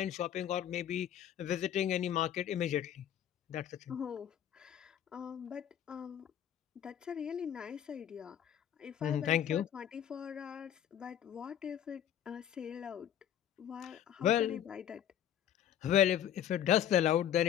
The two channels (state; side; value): quieter; right; 10.3 dB